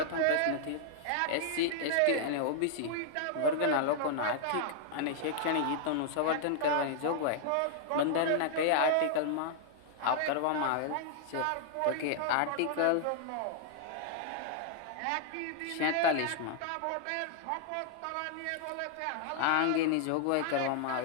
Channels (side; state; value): both; different; correlation -0.01